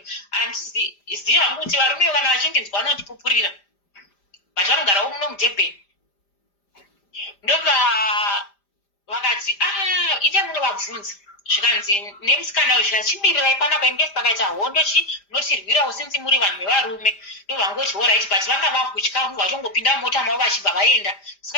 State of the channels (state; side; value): late; right; 5.0 ms